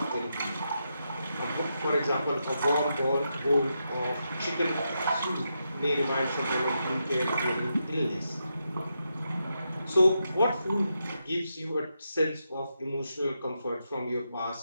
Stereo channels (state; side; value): inverted; both; correlation -0.84